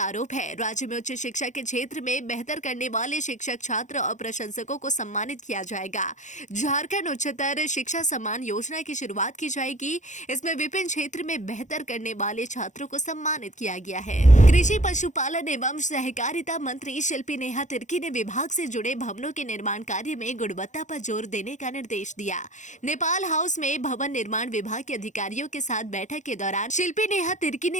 आरोप है। राज्य में उच्च शिक्षा के क्षेत्र में बेहतर करने वाले शिक्षक, छात्र और प्रशंसकों को सम्मानित किया जाएगा। झारखंड उच्चतर शिक्षा सम्मान योजना की शुरुआत की जाएगी। इसमें विभिन्न क्षेत्र में बेहतर करने वाले छात्रों को सम्मानित किया गया है। कृषि, पशुपालन एवं सहकारिता मंत्री शिल्पी नेहा तिर्की ने विभाग से जुड़े भवनों के निर्माण कार्य में गुणवत्ता पर जोर देने का निर्देश दिया। नेपाल हाउस में भवन निर्माण विभाग के अधिकारियों के साथ बैठक के दौरान शिल्पी नेहा तिर्की ने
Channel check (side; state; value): right; late; 0.35 ms